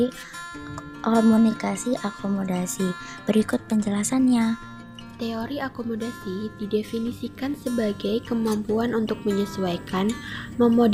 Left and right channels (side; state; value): both; identical; correlation 1.00